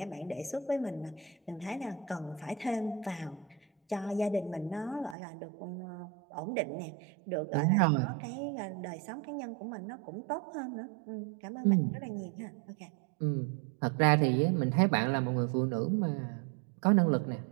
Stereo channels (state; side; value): drops out; left; at 5.2 s